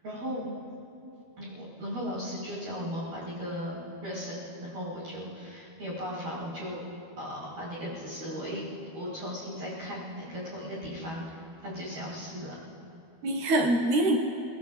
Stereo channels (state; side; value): late; left; 12 ms